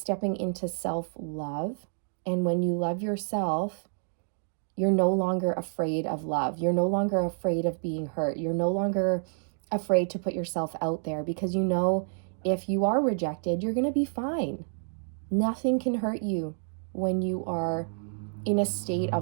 into self-love. And when you love yourself, you're no longer afraid of love. You're no longer afraid of being hurt. You're no longer afraid to put yourself out there, because you know if you are rejected, you're going to be fine. Nothing can hurt you when you are in a state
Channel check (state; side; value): silent; left; 59 dB below the other